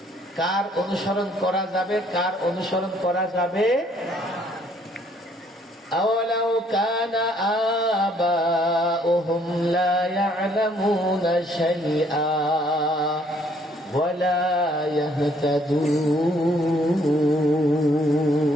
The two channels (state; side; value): normal; both; correlation 0.64